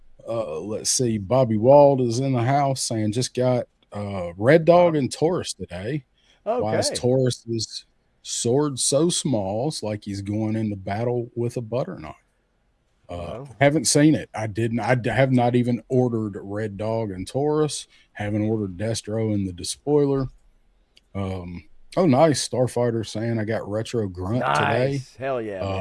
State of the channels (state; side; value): identical; both; correlation 1.00